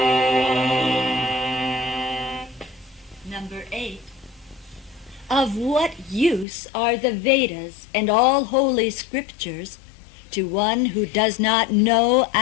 Number 8. Of what use are the Vedas and all holy scriptures to one who does not know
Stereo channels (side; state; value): right; drops out; at 6.5 s